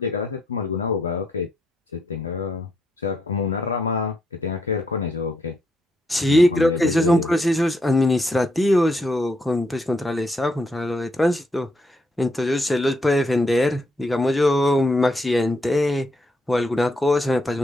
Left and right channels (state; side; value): normal; both; correlation 0.76